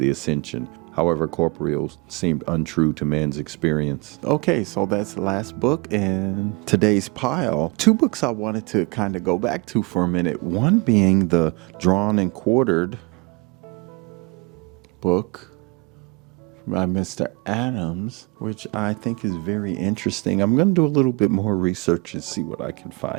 Ascension. However, corporeal seemed untrue to man's experience. Okay, so that's the last book in today's pile. Two books I wanted to kind of go back to for a minute. One being the Drawn and Quartered book by Mr. Adams, which I think is very interesting. I'm going to do a little bit more research and see what I can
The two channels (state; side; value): quieter; left; 28.2 dB